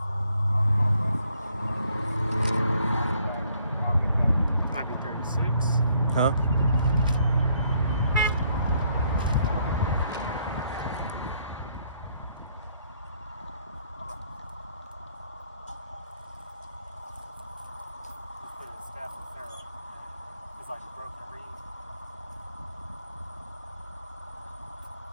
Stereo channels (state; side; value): inverted; both; correlation -0.68